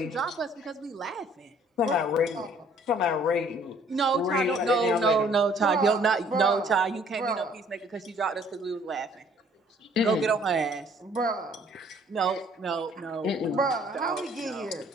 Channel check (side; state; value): both; normal; correlation 0.59